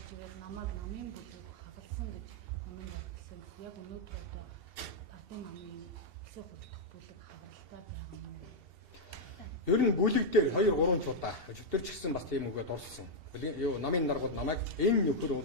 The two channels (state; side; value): late; left; 2.7 ms